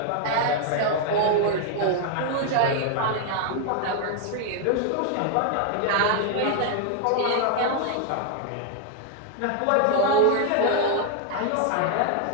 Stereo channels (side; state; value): both; different; correlation 0.00